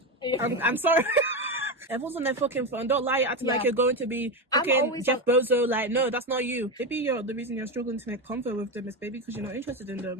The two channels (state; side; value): normal; both; correlation 0.15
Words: I'm sorry. Everyone's on their fucking phone. Don't lie, acting like you're going to be fucking Jeff Bezos. Like, no, that's not you. Maybe the reason you're struggling to make comfort with them is maybe because you're not interested in